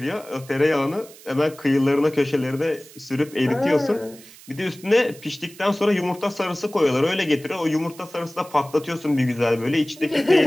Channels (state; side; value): noise; right; hiss, 21 dB below the sound